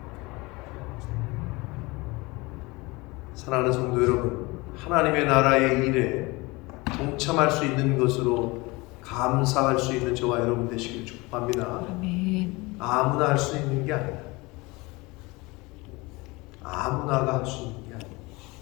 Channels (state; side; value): quieter; right; 23.9 dB